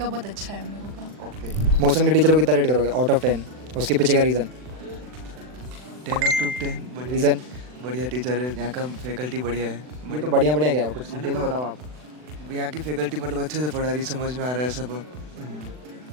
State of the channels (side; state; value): left; late; 40 ms